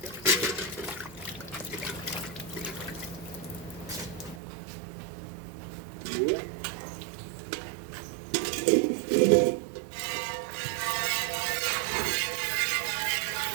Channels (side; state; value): left; drops out; at 4.4 s